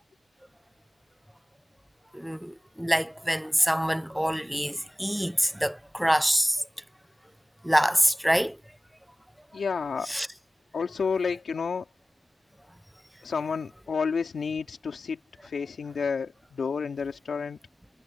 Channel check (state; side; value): normal; both; correlation 0.97